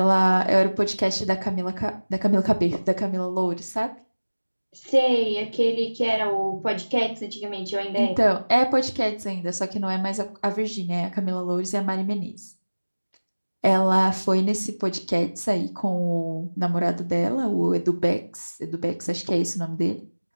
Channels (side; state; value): both; inverted; correlation -1.00